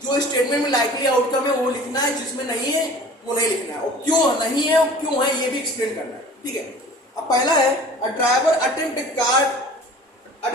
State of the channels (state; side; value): normal; both; correlation 0.44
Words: जो स्टेटमेंट में लाइकली आउटकम है वो लिखना है, जिसमें नहीं है वो नहीं लिखना है, और क्यों नहीं है और क्यों है ये भी एक्सप्लेन करना है, ठीक है। अब पहला है a driver attempt to